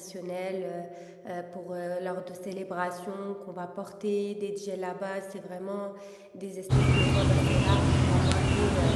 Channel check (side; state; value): both; identical; correlation 1.00